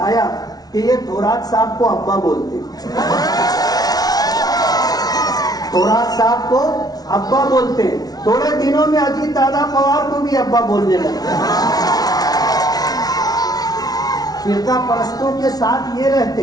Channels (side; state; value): right; late; 0.19 ms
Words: کہ یہ تھورات صاحب کو ابا بولتے, تھورات صاحب کو ابا بولتے. تھوڑے دنوں میں اجیت دادا پوار کو بھی ابا بولنے لگے. فرقہ پرستوں کے ساتھ یہ